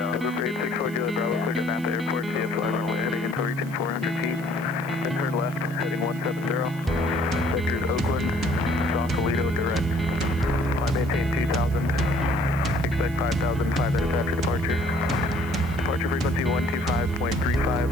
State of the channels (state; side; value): noise; right; hiss, 21 dB below the sound